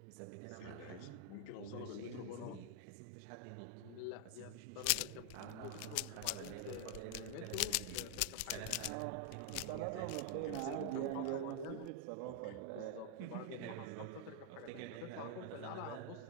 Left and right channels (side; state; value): both; different; correlation 0.00